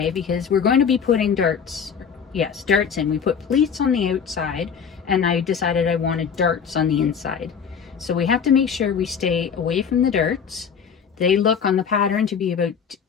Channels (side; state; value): right; quieter; 6.9 dB